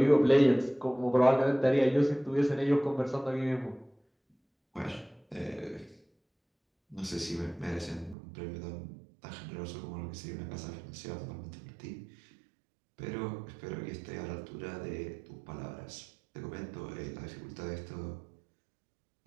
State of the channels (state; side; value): drops out; left; at 8.2 s